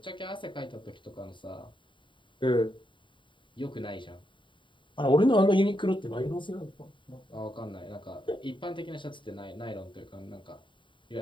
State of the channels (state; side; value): late; right; 0.23 ms